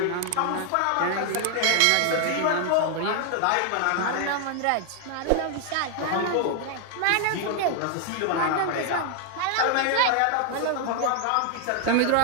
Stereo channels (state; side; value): different; both; correlation 0.00